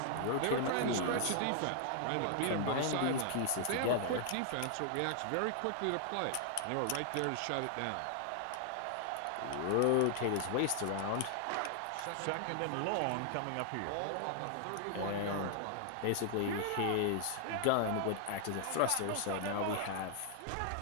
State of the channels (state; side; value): different; both; correlation 0.00